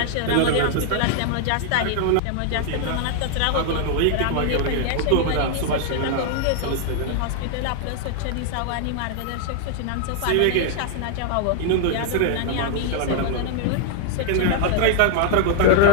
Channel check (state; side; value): different; both; correlation 0.00